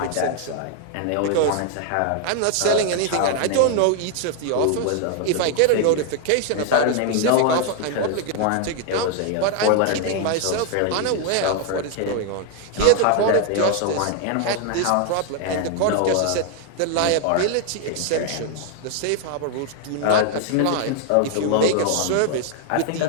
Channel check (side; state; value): both; different; correlation 0.01